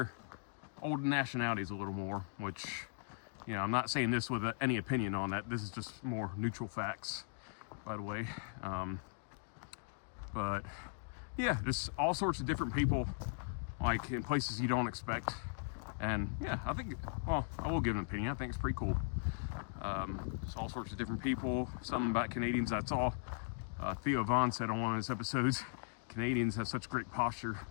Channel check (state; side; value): silent; right; digital silence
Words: old nationalities a little more, which, you know, I'm not saying this with any opinion on that. This is just more neutral facts, by the way. But yeah, just all sorts of different people, like in places you don't expect. And yeah, I think, well, I will give an opinion. I think it's pretty cool. It's all sorts of different people. Something about Canadians I saw, Theo Vaughn said on one of his episodes, Canadians have such great posture.